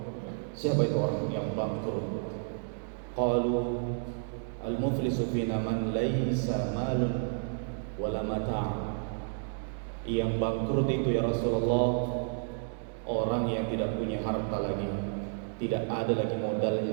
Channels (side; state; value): left; silent; digital silence